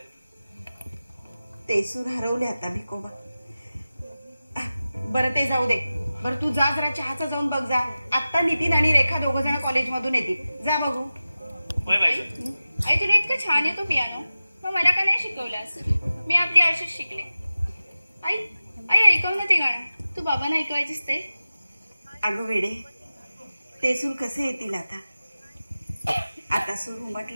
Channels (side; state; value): both; inverted; correlation -0.95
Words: ते सूर हरवले आता भिकोबा. बरं ते जाऊ दे. बरं तू जा जरा चहाचा जाऊन बघ जा. आत्ता नितीन आणि रेखा दोघ जण कॉलेजमधून येतील. जा बघू. होय बाईसाहेब. आई तुला इतकं छान येतो पियानो मग मला का नाही शिकवलास. मी आपली अशीच शिकले. आई आई ऐकव ना ते गाणं. तू बाबांना ऐकवायचीस ते. अगं वेडे ते सूर कसे येतील आता. आता सूर